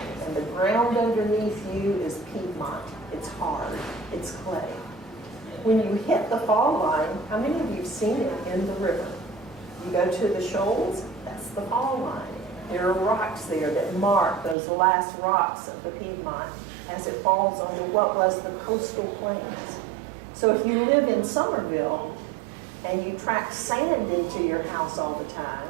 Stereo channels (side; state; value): left; drops out; at 14.6 s